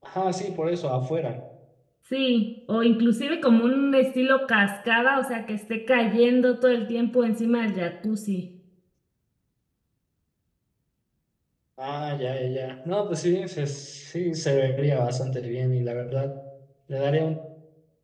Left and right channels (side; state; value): both; identical; correlation 1.00